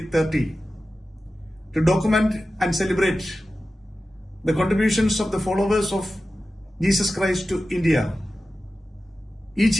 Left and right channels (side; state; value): both; normal; correlation 0.94